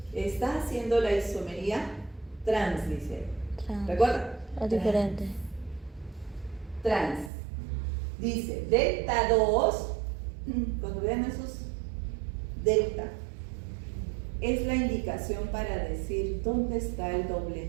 está haciendo la isomería trans, dice. ¿Recuerdan? Es diferente. Trans. Dice delta 2, cuando vean esos delta, es la indicación para decir dónde está el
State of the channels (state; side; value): drops out; left; at 7.3 s